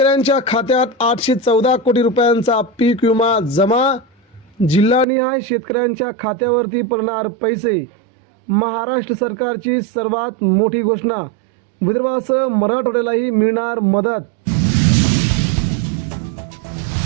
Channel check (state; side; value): drops out; left; at 5.1 s